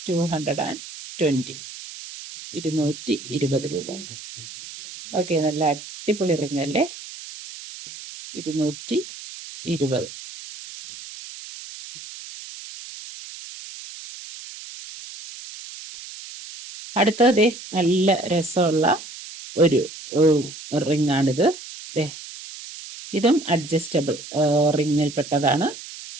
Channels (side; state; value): right; noise; hiss, 14 dB below the sound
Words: 220, 220 രൂപ. ഓക്കെ, നല്ല അടിപൊളി റിംഗ് അല്ലേ. 220. അടുത്തത് നല്ല രസമുള്ള ഒരു റിംഗ് ആണിത്. ഇതും അഡ്ജസ്റ്റബിൾ റിങ്ങിൽപ്പെട്ടതാണ്.